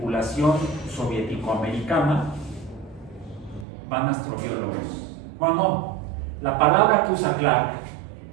soviético-americana, van astrobiólogos. Bueno, la palabra que usa Clark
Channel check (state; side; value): drops out; left; at 3.7 s